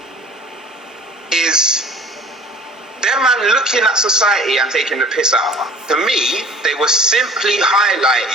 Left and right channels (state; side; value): normal; both; correlation 0.47